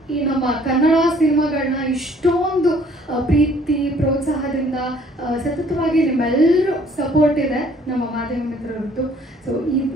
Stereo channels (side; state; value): both; normal; correlation 0.58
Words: ಈ ನಮ್ಮ ಕನ್ನಡ ಸಿನಿಮಾಗಳನ್ನ ಇಷ್ಟೊಂದು ಪ್ರೀತಿ ಪ್ರೋತ್ಸಾಹದಿಂದ ಸತತವಾಗಿ ನಿಮ್ಮೆಲ್ಲರೂ ಸಪೋರ್ಟ್ ಇದೆ ನಮ್ಮ ಮಾಧ್ಯಮ ಮಿತ್ರರದ್ದು. ಸೊ